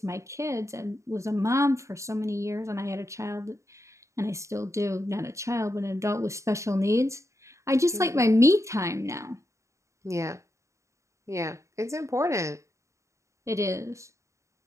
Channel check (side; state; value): left; late; 0.14 ms